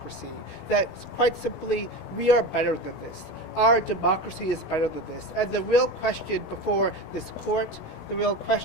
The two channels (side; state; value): right; late; 16 ms